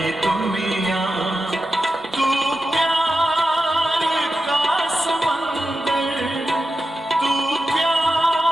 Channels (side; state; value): both; normal; correlation 0.90